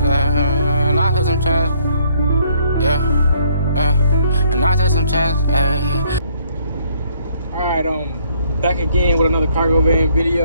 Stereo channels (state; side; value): inverted; both; correlation -0.66